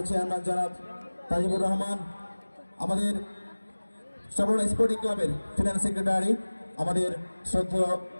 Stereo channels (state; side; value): inverted; both; correlation -1.00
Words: চেয়ারম্যান জনাব তাজিবুর রহমান, আমাদের সবরণ স্পোর্টিং ক্লাবের ফিনান্স সেক্রেটারি আমাদের শ্রদ্ধেয়